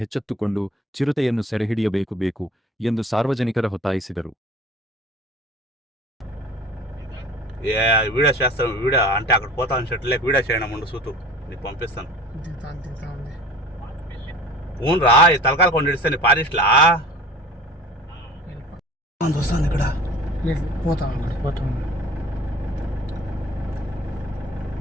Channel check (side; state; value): both; normal; correlation 0.43